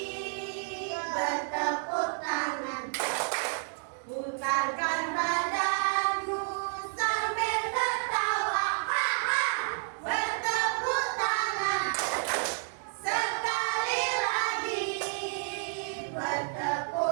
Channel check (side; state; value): left; silent; 58 dB below the other